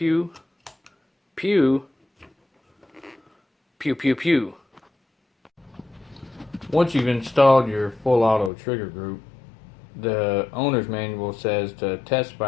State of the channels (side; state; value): right; drops out; at 8.5 s